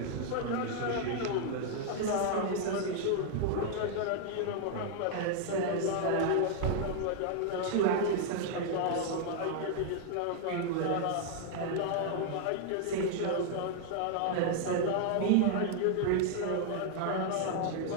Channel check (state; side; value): different; both; correlation 0.00